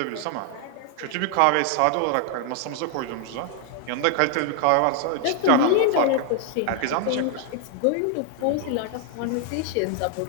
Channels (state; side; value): different; both; correlation 0.00